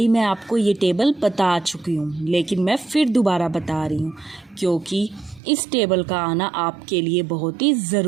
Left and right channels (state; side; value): drops out; left; at 5.4 s